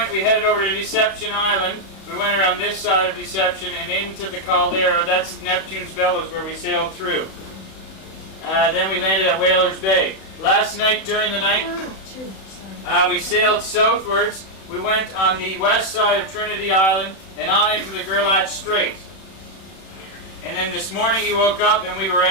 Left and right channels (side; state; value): right; late; 31 ms